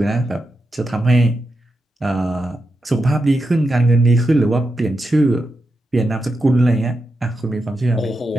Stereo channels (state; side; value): normal; both; correlation 0.87